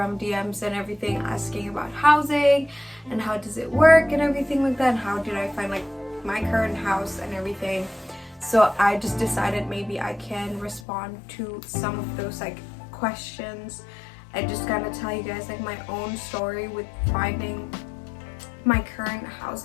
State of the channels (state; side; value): drops out; right; at 10.8 s